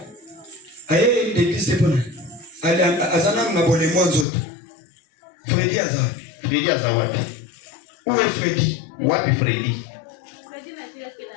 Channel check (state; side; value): drops out; right; at 4.2 s